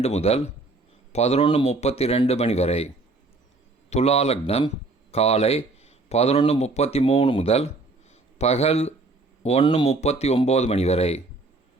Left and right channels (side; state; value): left; quieter; 3.3 dB